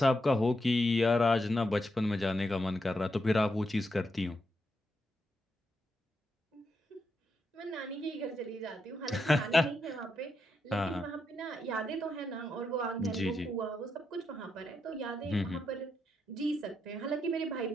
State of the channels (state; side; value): normal; both; correlation 0.82